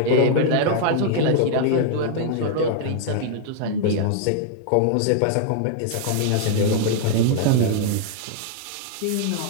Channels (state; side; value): different; both; correlation 0.00